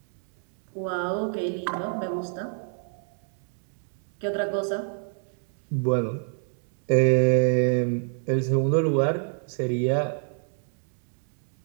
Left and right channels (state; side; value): silent; left; digital silence